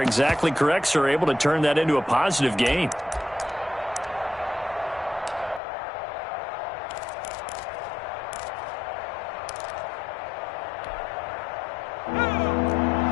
correct, sir, able to turn that into a positive gain.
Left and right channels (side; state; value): right; drops out; at 5.6 s